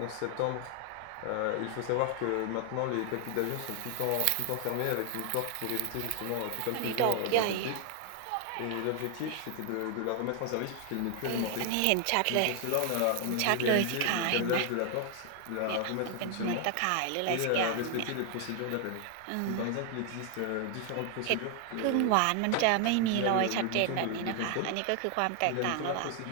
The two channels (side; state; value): both; different; correlation 0.00